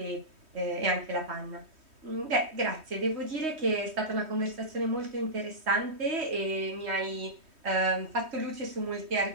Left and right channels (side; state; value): left; late; 3.1 ms